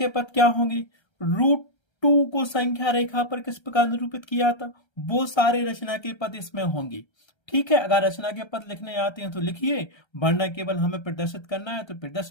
पद क्या होंगे? √2 को संख्या रेखा पर किस प्रकार निरूपित किया था, वो सारे रचना के पद इसमें होंगे, ठीक है। अगर रचना के पद लिखने आते हैं तो लिखिए, वरना केवल हमें प्रदर्शित करना है तो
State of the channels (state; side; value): late; right; 1.3 ms